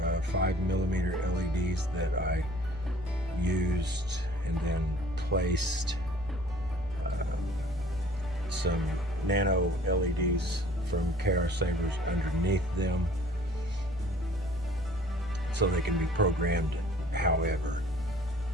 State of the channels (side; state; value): both; normal; correlation 0.52